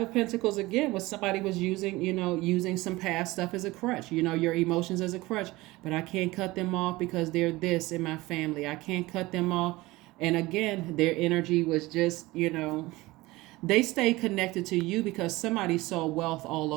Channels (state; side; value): quieter; left; 20.2 dB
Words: of Pentacles again was somebody was using some past stuff as a crutch, your emotions as a crutch. But I can't cut them off because they're this in my family. I can't cut them off. And again, their energy was just, they stay connected to you because somebody saw wealth all